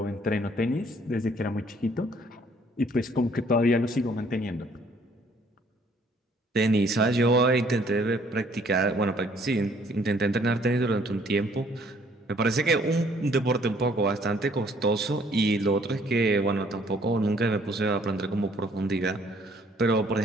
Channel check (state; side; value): normal; both; correlation 0.61